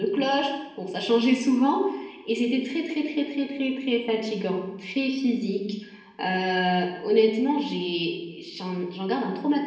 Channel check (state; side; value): identical; both; correlation 1.00